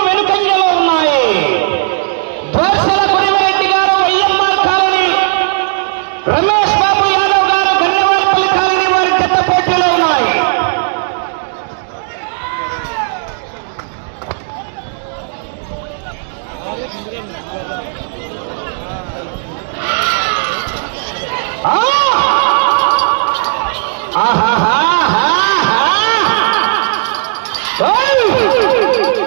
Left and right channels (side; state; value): left; silent; digital silence